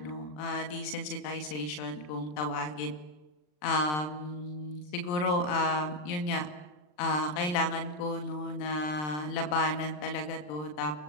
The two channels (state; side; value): late; right; 39 ms